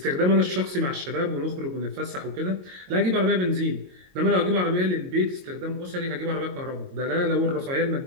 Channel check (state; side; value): late; left; 22 ms